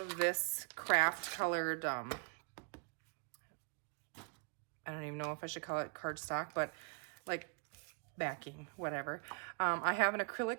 this craft colored, I don't even know if I should call it cardstock, but like backing, whatever. I have an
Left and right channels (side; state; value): left; quieter; 35.9 dB